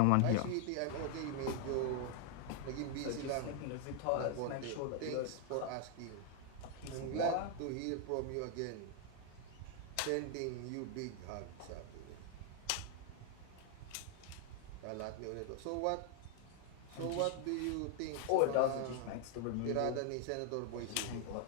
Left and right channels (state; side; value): different; both; correlation 0.00